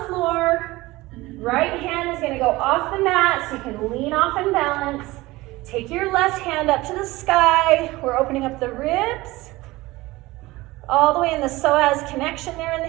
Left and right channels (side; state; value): left; quieter; 19.8 dB